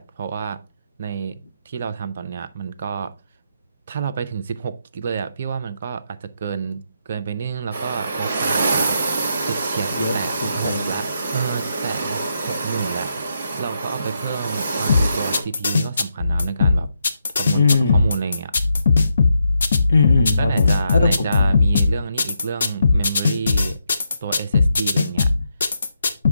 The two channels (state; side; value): inverted; both; correlation -0.81